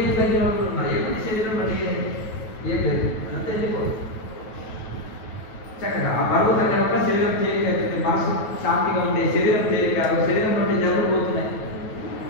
తగ్గిన వాళ్ళు ఉన్నారు. ఎప్పుడు శరీరం బట్టి ఏం లేదు, అంతా వెళ్ళిపోదు. చక్కగా ఆ బరువు తగ్గడం శరీరం తేలిక, మనసు శాంతిగా ఉండే శరీరం తేలిక, శరీరం నుండి జబ్బులు పోతున్నాయి.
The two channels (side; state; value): right; late; 9.2 ms